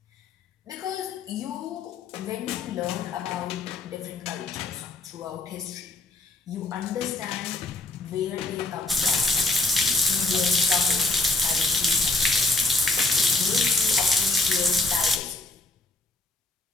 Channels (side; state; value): right; quieter; 3.1 dB